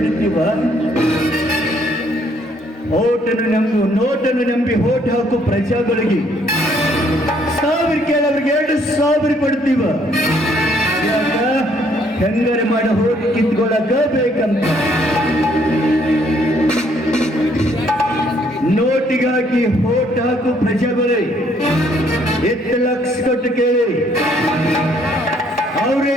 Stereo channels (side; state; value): both; normal; correlation 0.66